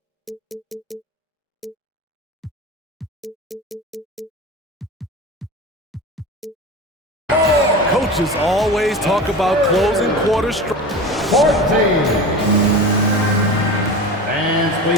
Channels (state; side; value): normal; both; correlation 0.30